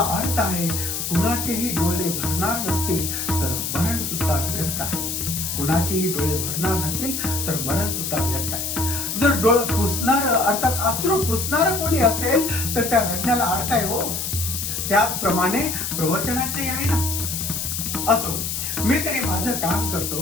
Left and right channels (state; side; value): noise; left; hiss, 3 dB below the sound